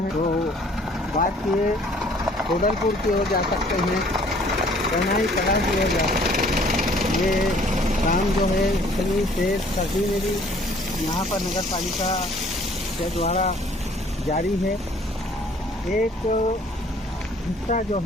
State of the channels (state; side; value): normal; both; correlation 0.57